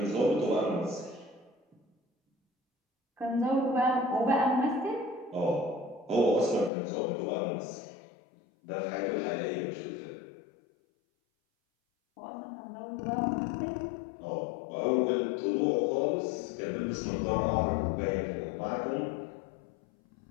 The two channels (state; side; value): drops out; right; at 6.7 s